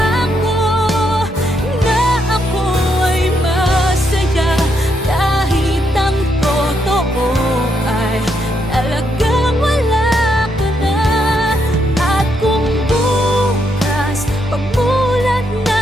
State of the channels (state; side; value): normal; both; correlation 0.78